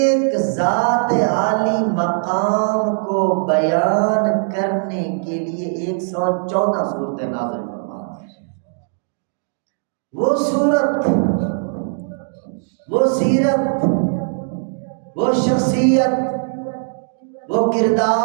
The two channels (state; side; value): silent; left; digital silence